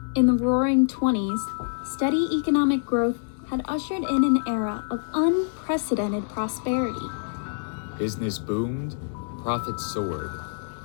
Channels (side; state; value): right; silent; digital silence